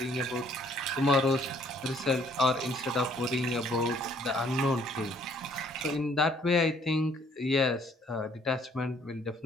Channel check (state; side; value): normal; both; correlation 0.62